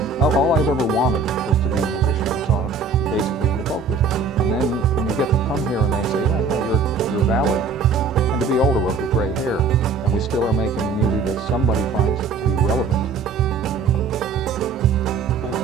all I've ever wanted was to be a musician. It's all basically in the folk business. And then when you get to come here and they say, yeah, you're valid. And to be older with gray hair, and we still are making music that somebody finds to be relevant.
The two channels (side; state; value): left; quieter; 4.8 dB